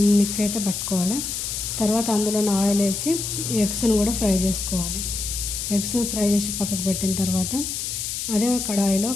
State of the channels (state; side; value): noise; left; hiss, 4 dB below the sound